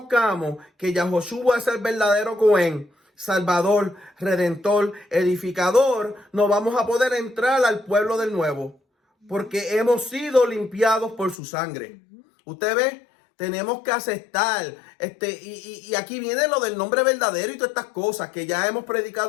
que Yahoshua es el verdadero Cohen, Salvador, Redentor, Edificador, no vamos a poder entrar al pueblo del nuevo. Porque hemos sido limpiados por su sangre. Usted ve, tenemos que aceptar. Y aquí viene lo del nombre verdadero y todas estas cosas que ya hemos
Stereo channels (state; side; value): drops out; right; at 11.4 s